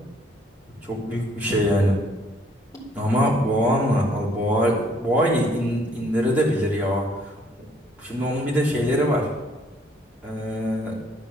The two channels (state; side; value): normal; both; correlation 0.63